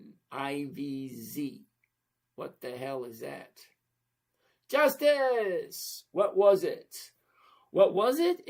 IVZ. What the hell is that? Justice! What was it? What was it?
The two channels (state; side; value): identical; both; correlation 1.00